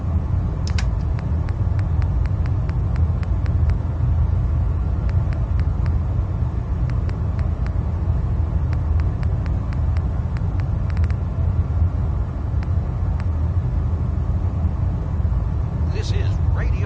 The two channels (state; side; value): identical; both; correlation 1.00